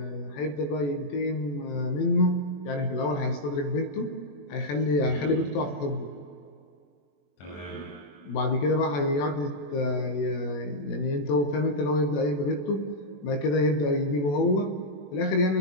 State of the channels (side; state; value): right; late; 21 ms